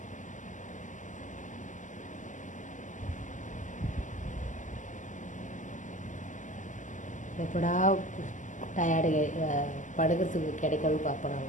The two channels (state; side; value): late; right; 0.37 ms